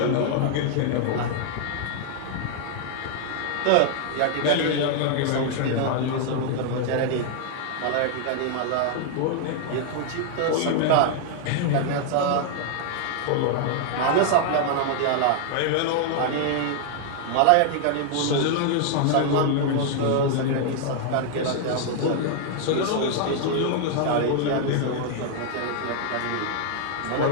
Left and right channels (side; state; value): both; different; correlation 0.00